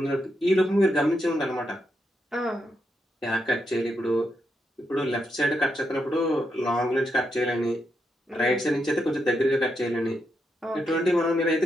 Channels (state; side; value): normal; both; correlation 0.83